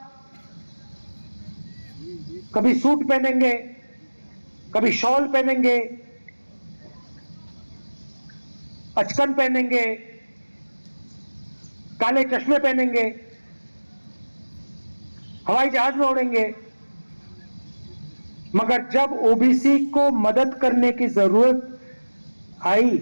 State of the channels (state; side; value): inverted; both; correlation -1.00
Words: कभी सूट पहनेंगे, कभी शॉल पहनेंगे, अचकन पहनेंगे, काले चश्मे पहनेंगे, हवाई जहाज में उड़ेंगे। मगर जब ओबीसी को मदद करने की जरूरत आई,